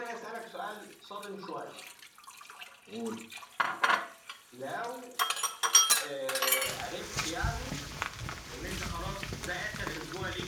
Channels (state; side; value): identical; both; correlation 1.00